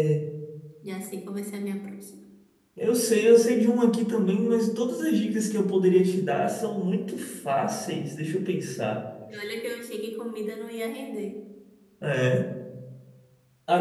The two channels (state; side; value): identical; both; correlation 1.00